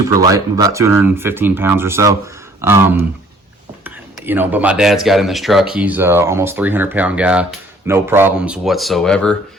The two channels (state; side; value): normal; both; correlation 0.57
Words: light. I'm about 215 pounds or so. But my dad's got in this truck. He's almost 300-pound guy. No problems whatsoever.